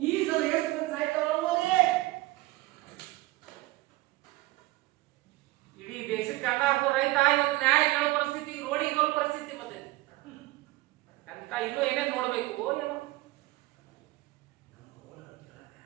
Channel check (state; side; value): quieter; left; 19.2 dB